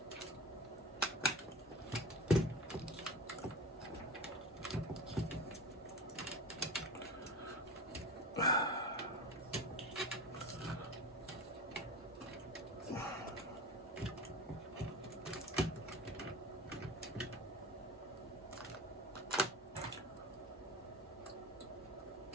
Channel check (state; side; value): normal; both; correlation 0.33